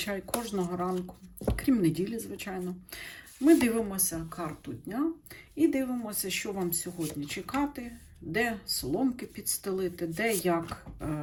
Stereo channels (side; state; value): both; identical; correlation 1.00